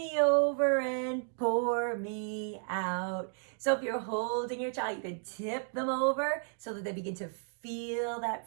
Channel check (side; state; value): left; silent; 56 dB below the other